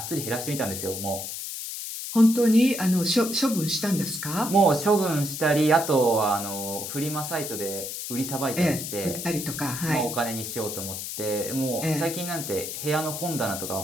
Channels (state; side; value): noise; left; hiss, 6 dB below the sound